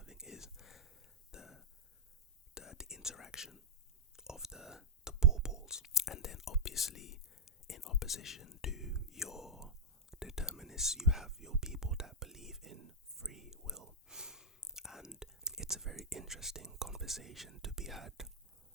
is the interaction of the ball balls. And then obviously, in opposition to your determinists, you have your people that believe in free will. And it's a very interesting conversation to be had,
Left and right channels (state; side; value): normal; both; correlation -0.07